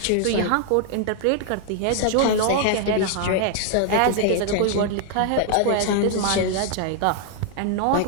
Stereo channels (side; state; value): both; different; correlation 0.00